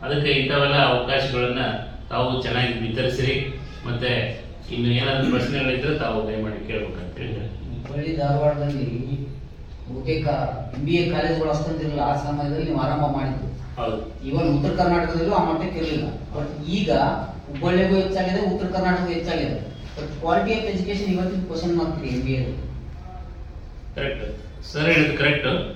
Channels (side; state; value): both; identical; correlation 1.00